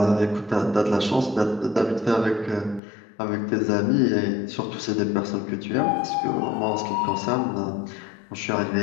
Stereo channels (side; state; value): right; drops out; at 2.8 s